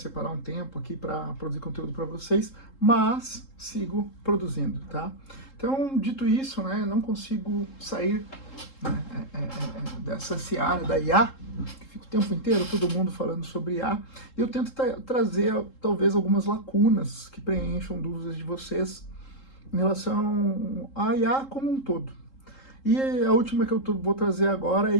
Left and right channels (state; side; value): late; right; 3.7 ms